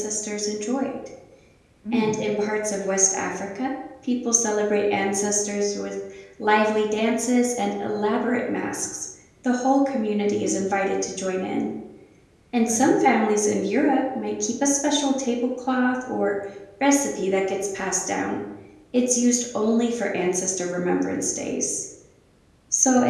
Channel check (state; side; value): identical; both; correlation 1.00